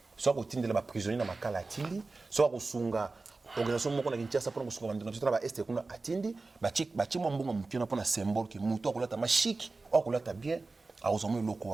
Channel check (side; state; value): left; quieter; 3.6 dB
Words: soit ko tindela ba prisonnier na makala atindi soit ko sunga organisation moko na Kinshasa pour ko sunga bandeko na ba est kuna atindi ba chi mbongo mukena pour na symbole que mutu akolata ma chic akolata bien a ozomo loko